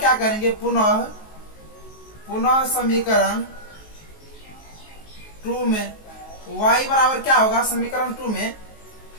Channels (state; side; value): late; right; 19 ms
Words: करेंगे, पुनः समीकरण 2 में y बराबर क्या होगा, समीकरण 2 में